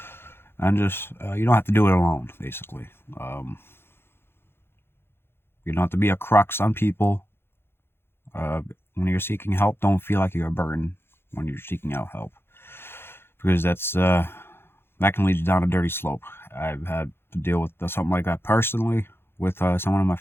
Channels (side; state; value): right; late; 0.11 ms